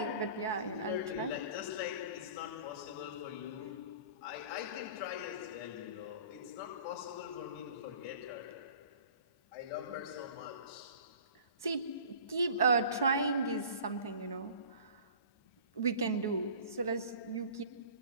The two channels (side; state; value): right; late; 1.1 ms